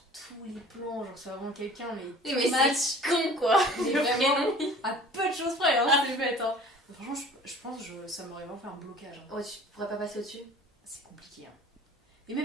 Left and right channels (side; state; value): both; normal; correlation 0.46